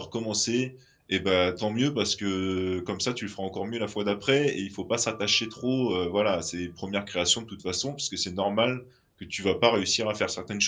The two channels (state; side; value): identical; both; correlation 1.00